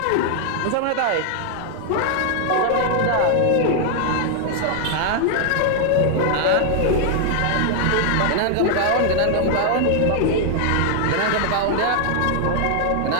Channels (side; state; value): both; different; correlation 0.00